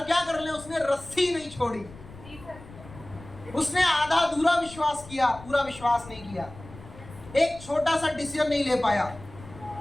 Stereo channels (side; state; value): left; noise; rumble, 18 dB below the sound